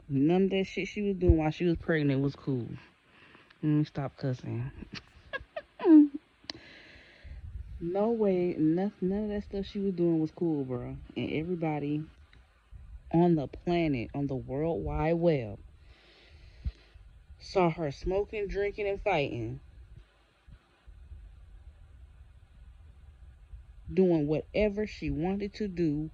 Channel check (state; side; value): identical; both; correlation 1.00